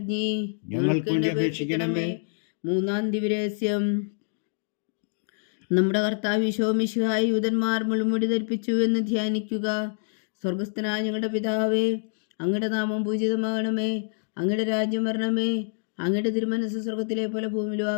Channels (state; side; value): silent; right; digital silence